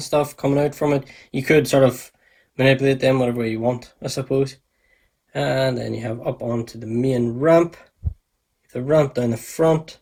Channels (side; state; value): both; identical; correlation 1.00